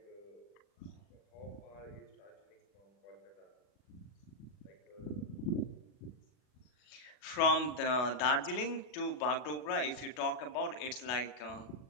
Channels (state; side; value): late; right; 40 ms